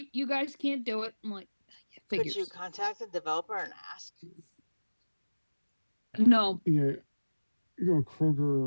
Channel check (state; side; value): inverted; both; correlation -1.00